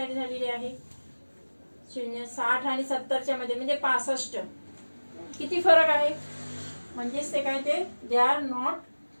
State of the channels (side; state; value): both; inverted; correlation -1.00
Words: झालेली आहे. 0, 60 आणि 70च्या मध्ये, म्हणजे 65. किती फरक आहे? म्हणजेच ते काय, ते दे आर नॉट